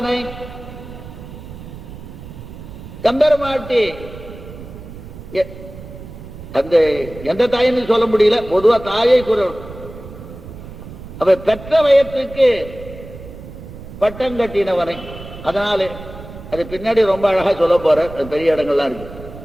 கம்பெருமாட்டி அந்த எந்த தாயின்னு சொல்ல முடியல, பொதுவா தாயை குரல். அவ பெற்ற வயத்துக்கு பட்டம் கட்டினவனை. அதனால அது பின்னாடி ரொம்ப அழகா சொல்ல போற, பெரிய இடங்கள்லாம் இருக்கு.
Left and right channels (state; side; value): noise; right; rumble, 14 dB below the sound